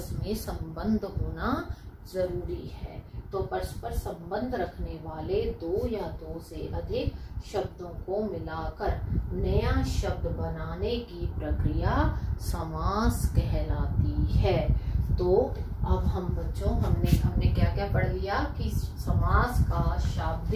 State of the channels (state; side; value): identical; both; correlation 1.00